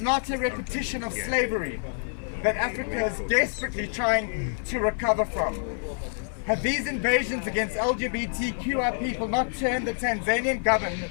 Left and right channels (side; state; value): right; silent; digital silence